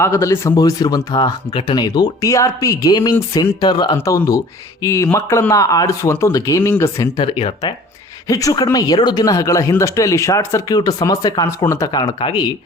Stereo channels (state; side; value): normal; both; correlation 0.48